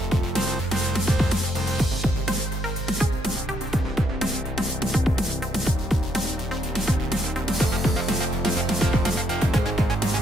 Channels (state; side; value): normal; both; correlation 0.72